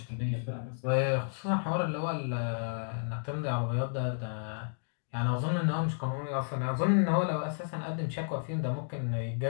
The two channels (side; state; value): right; silent; digital silence